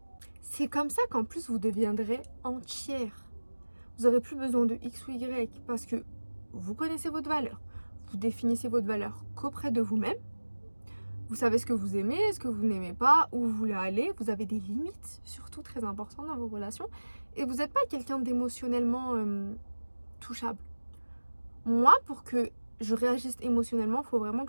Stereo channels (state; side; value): inverted; both; correlation -1.00